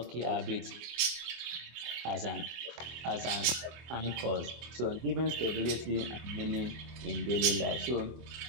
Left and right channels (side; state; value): left; late; 24 ms